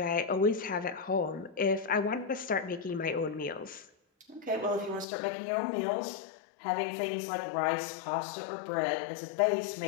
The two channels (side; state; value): right; drops out; at 5.1 s